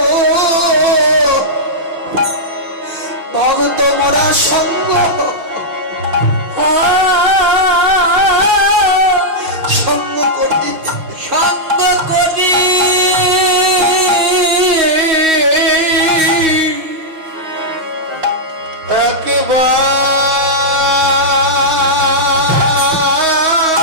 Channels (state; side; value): late; left; 6.3 ms